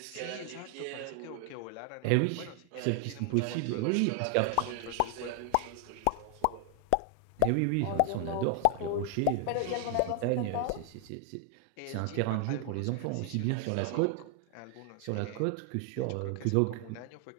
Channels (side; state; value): both; different; correlation 0.00